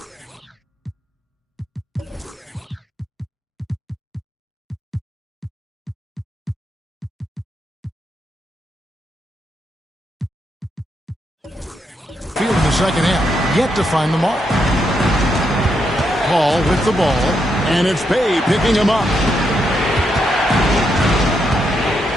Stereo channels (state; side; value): normal; both; correlation 0.80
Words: field in the second half. Yet to find the mark. Hall with the ball. And it's Bey picking him up.